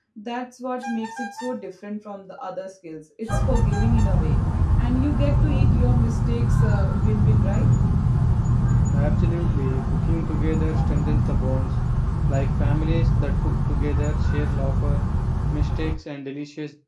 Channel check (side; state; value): both; identical; correlation 1.00